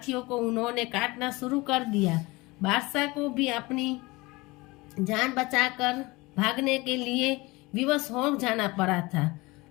को उन्होंने काटना शुरू कर दिया। बादशाह को भी अपनी जान बचाकर भागने के लिए विवश हो जाना पड़ा था।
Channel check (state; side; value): quieter; right; 22.9 dB